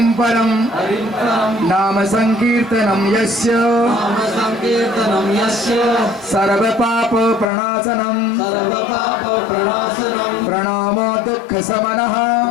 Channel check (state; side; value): drops out; right; at 7.5 s